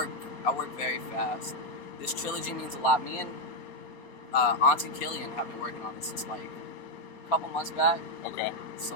very fast. This trilogy means a lot. Me and auntiekilian have been working on this since like a couple months back. Okay. So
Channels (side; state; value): right; late; 4.2 ms